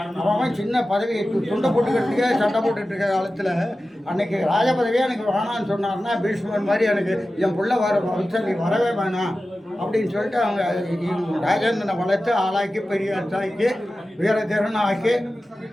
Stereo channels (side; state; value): both; normal; correlation 0.94